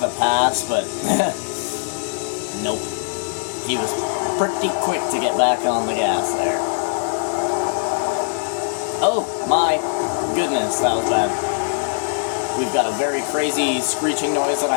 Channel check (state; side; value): silent; right; digital silence